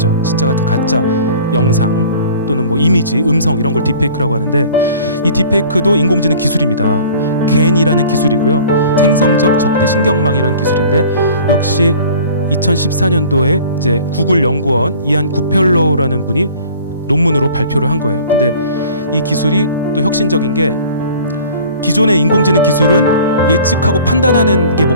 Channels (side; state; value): both; inverted; correlation -0.46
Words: 진짜 같은 가짜 영상 또는 뭐 이미지, 음성 이런 걸 딥페이크라고 하는데, 이 딥페이크도 인공지능 기술입니다. 겐이라는 기술이고요. 생성적 적대 신경망이라는 기술인데, 역시 2014년도에 이제 구글 연구원 이안 구펠로우라는 분이 논문으로 발표를 한 거예요. 근데 이 기술이 또 혁신적인 게, 기존의 인공지능 기술은 예측하고 판단하는 게